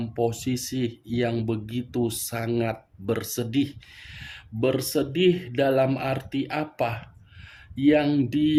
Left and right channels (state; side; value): identical; both; correlation 1.00